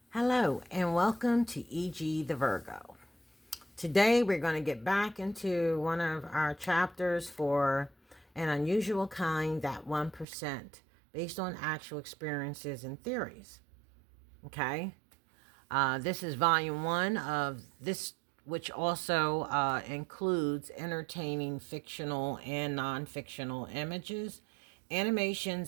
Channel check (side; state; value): left; drops out; at 10.2 s